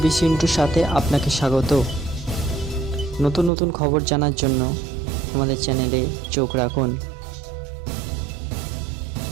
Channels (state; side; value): drops out; left; at 3.5 s